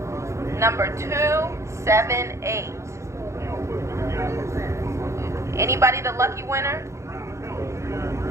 Number 278. Anybody the lucky winner?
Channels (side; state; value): left; late; 0.14 ms